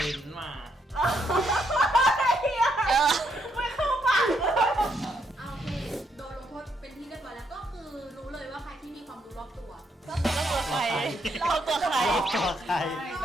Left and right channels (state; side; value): normal; both; correlation 0.76